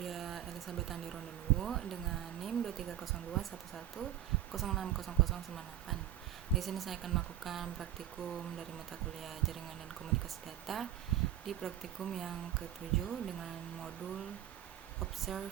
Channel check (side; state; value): left; quieter; 12.4 dB